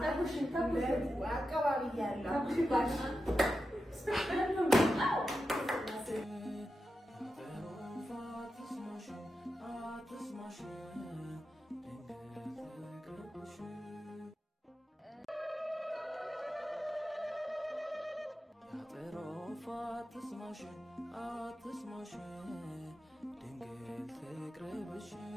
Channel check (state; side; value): normal; both; correlation 0.90